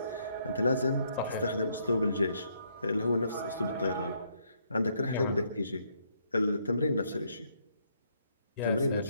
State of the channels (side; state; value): both; inverted; correlation -0.72